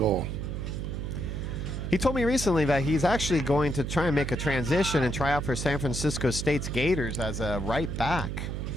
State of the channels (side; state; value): right; noise; hum, 4 dB below the sound